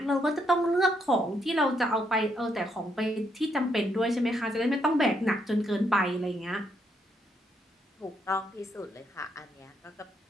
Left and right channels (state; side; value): normal; both; correlation 0.75